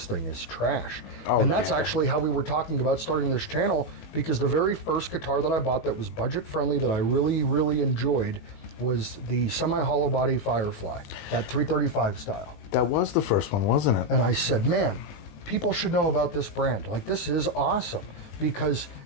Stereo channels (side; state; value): right; late; 19 ms